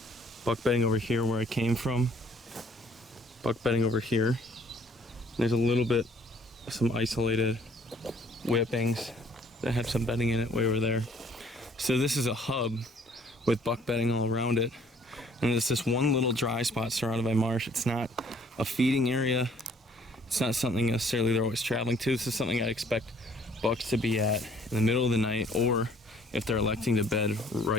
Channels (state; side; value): normal; both; correlation 0.60